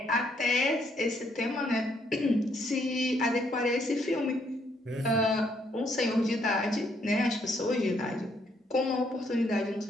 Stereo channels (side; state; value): both; normal; correlation 0.71